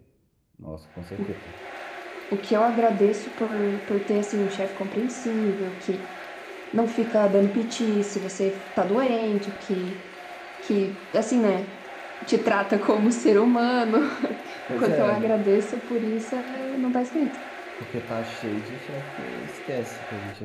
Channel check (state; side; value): identical; both; correlation 1.00